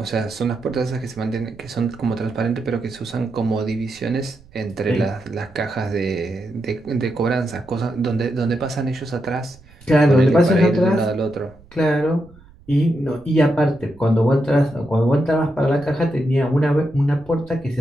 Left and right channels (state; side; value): noise; right; rumble, 26 dB below the sound